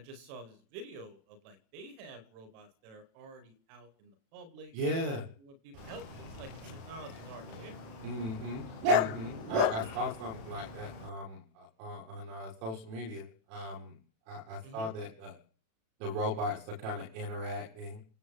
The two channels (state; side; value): late; left; 36 ms